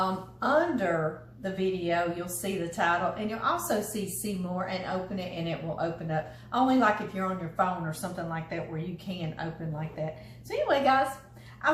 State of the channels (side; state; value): both; identical; correlation 1.00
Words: the video, you'll see the title. And you'll also see more, and open it, and it will open up. Only like if you're on your phone or something like that, where you can open like that. So anyway, guys, I'll